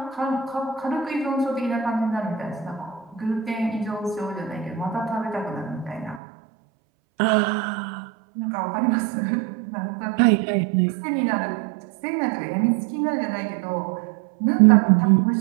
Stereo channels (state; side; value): drops out; left; at 6.2 s